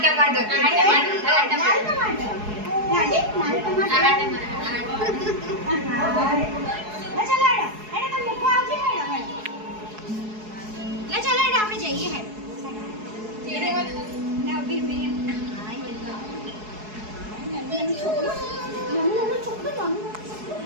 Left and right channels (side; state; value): left; late; 4.7 ms